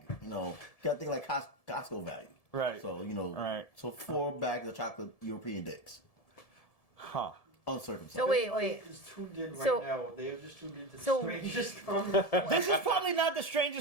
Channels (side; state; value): right; late; 1.7 ms